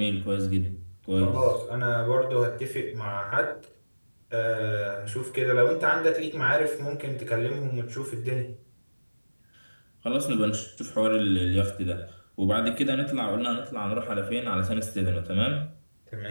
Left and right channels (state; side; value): inverted; both; correlation -1.00